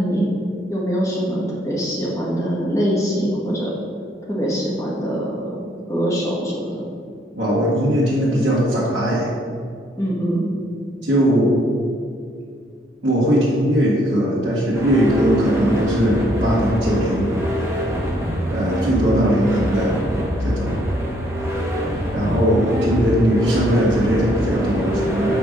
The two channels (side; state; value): both; normal; correlation 0.68